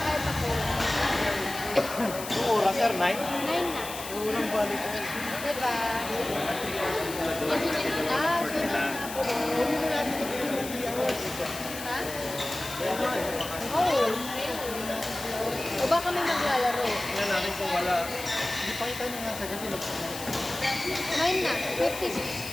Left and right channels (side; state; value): left; noise; hiss, 10 dB below the sound